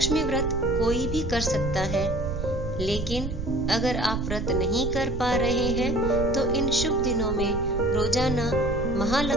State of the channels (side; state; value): right; noise; rumble, 5 dB below the sound